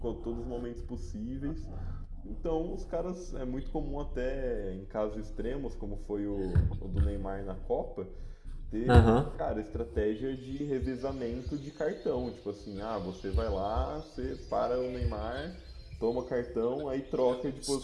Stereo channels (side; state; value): both; identical; correlation 1.00